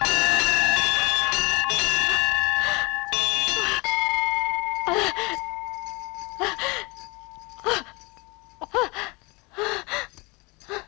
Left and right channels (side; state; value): right; quieter; 26.7 dB